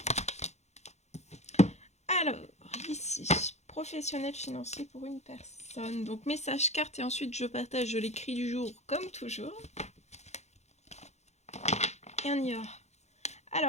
ici, professionnel financier pour une personne. Donc, message carte et ensuite je partage l'écrit du jour comme toujours. Et on y va.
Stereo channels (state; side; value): late; right; 0.32 ms